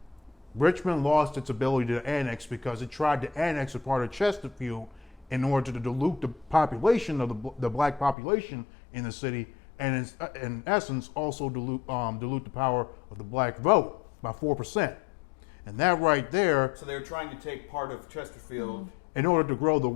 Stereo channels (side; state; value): right; drops out; at 8.2 s